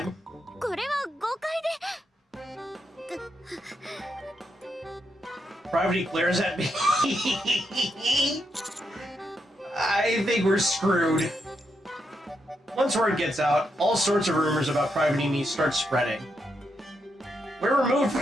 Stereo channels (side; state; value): both; normal; correlation 0.82